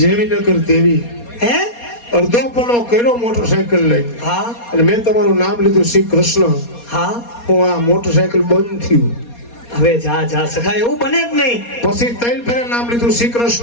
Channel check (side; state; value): right; late; 4.2 ms